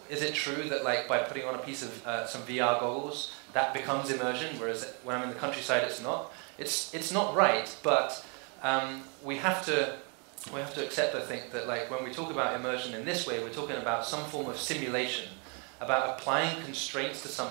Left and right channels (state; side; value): quieter; left; 36.3 dB